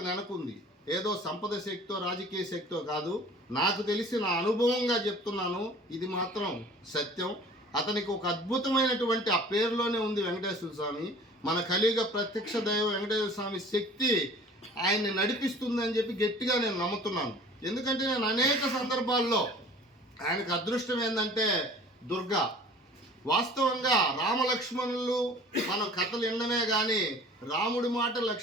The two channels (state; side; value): normal; both; correlation 0.46